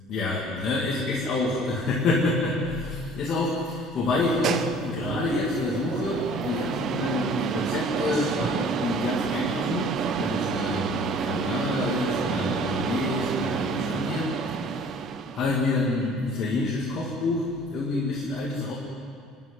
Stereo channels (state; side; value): normal; both; correlation 0.50